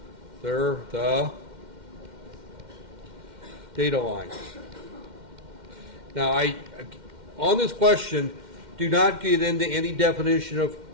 They're the data lines. Now, on this question, do not get into any definition of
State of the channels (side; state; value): left; late; 2.1 ms